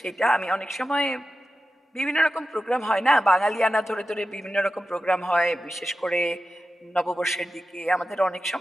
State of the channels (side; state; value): both; normal; correlation 0.92